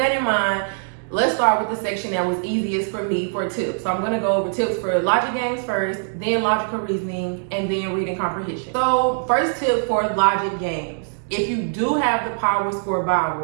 in mind, let's start with the section that was easiest for me for tips. So I'm going to go over tips for logic games first, then logical reasoning, and then reading comprehension. So first tip for logic games. If you do have the Power Score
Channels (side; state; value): left; silent; digital silence